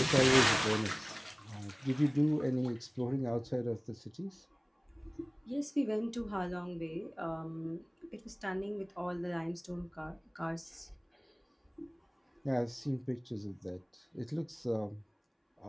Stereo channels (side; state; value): both; identical; correlation 1.00